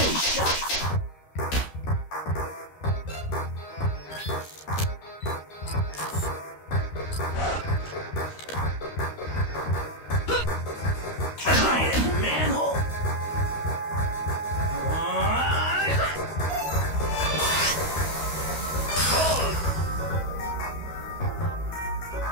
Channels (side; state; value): right; late; 13 ms